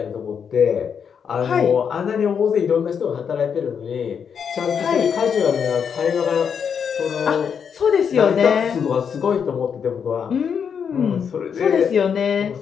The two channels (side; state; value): right; quieter; 7.1 dB